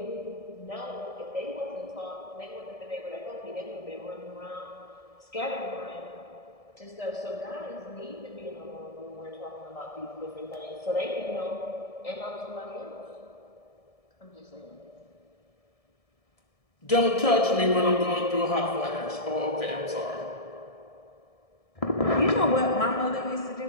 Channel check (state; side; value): late; right; 1.7 ms